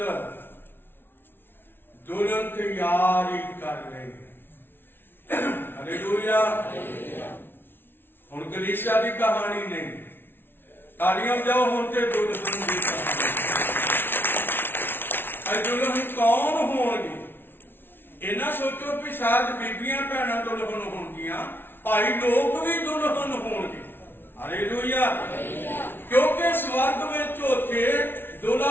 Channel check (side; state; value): right; late; 0.11 ms